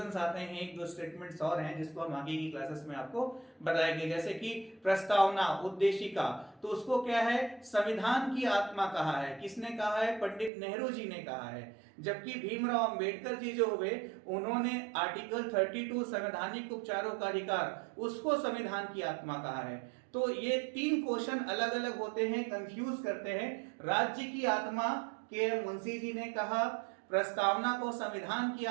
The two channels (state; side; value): drops out; left; at 10.5 s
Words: आते हैं, एक दो स्टेटमेंट्स और हैं जिसको हम आगे की क्लासेस में आपको बताएंगे। जैसे कि प्रस्तावना, उद्देशिका, तो उसको क्या है, संविधान की आत्मा कहा है। किसने कहा है? पंडित नेहरू जी ने कहा है। जबकि भीमराव अंबेडकर जी जो हुए, उन्होंने आर्टिकल 32 संवैधानिक उपचारों का अधिकार, उसको संविधान की आत्मा कहा है। तो ये तीन क्वेश्चन अलग अलग होते हैं, कंफ्यूज करते हैं। राज्य की आत्मा के मुंशी जी ने कहा, प्रस्तावना को संविधान की